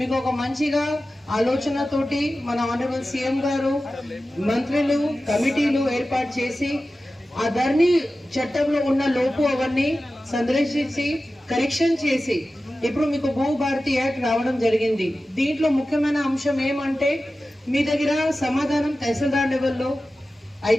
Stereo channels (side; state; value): both; normal; correlation 0.94